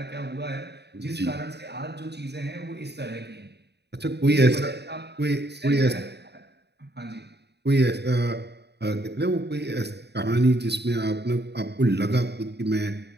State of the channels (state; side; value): late; left; 0.49 ms